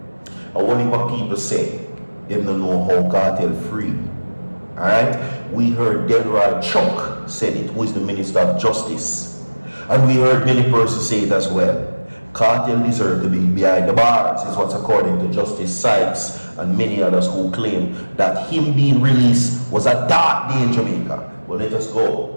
And only what people say, they don't know how Kartel free. Alright? We heard Delroy Chuck said it, who is the Minister of Justice. And we heard many persons say it as well. Kartel deserved to be behind the bars, is what's according to Justice Sykes and many others who claim that him being released was a dark day in Jamaica. But let us go.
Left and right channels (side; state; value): both; inverted; correlation -1.00